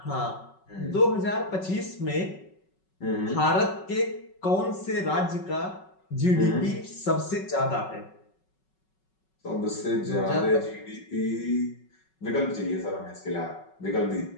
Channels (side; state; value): right; late; 5.4 ms